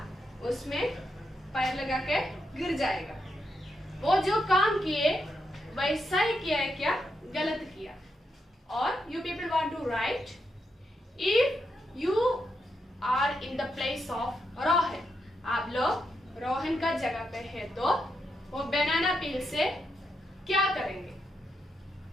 उसमें पैर लगा के गिर जाएगा. वो जो काम किए वैसा ही किया है क्या? गलत किया. और you people want to write, if you are in the place of Rohan, आप लोग रोहन का जगह पे है तो वो बनाना पील से क्या करेंगे?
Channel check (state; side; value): normal; both; correlation 0.82